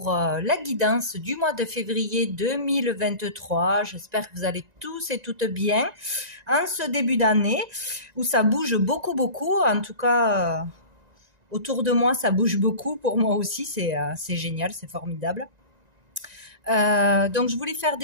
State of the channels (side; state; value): left; late; 1.9 ms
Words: la guidance du mois de février 2023. J'espère que vous allez tous et toutes bien en ce début d'année où ça bouge beaucoup. En tout cas, autour de moi, ça bouge beaucoup. Pour moi aussi, c'est génial, c'est formidable. Donc, je voulais faire